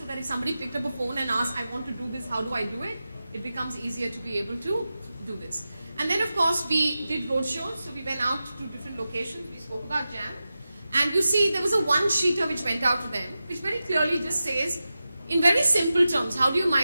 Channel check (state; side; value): inverted; both; correlation -0.93